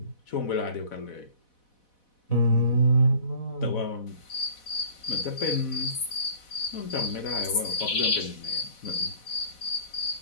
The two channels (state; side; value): late; right; 4.1 ms